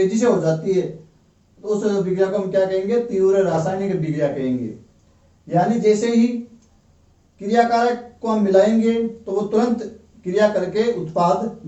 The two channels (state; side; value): identical; both; correlation 1.00